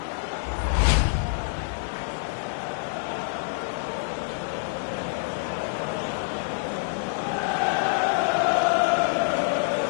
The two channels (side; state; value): right; silent; digital silence